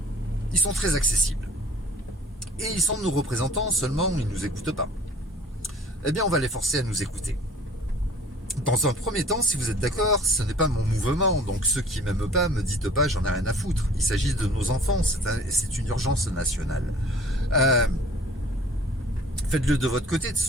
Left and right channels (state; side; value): normal; both; correlation 0.50